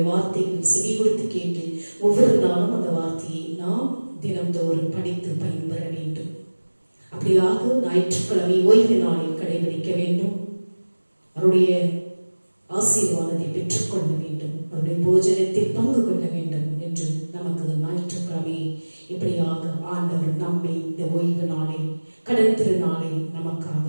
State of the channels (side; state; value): both; inverted; correlation -1.00